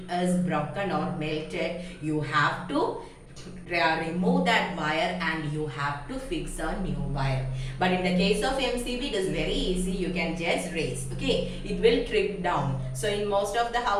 is broken or melted, you have to remove that wire and you have to fix a new wire. But in the case of MCB, it is very easy. You can just raise. Okay, it will trip down. So in most of the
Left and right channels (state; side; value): identical; both; correlation 1.00